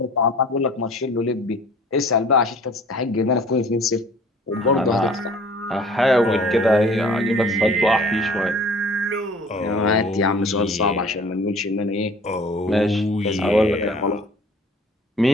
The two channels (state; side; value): normal; both; correlation 0.49